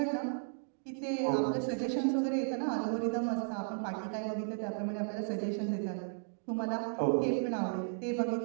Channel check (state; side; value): silent; left; digital silence